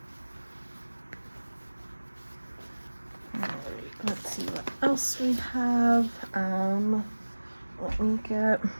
else we have? Let me get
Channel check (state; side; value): inverted; both; correlation -1.00